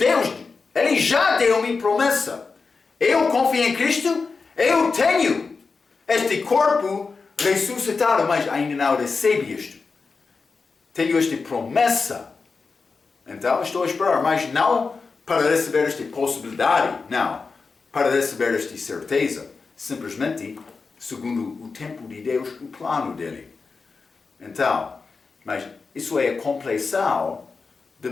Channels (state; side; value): quieter; right; 4.6 dB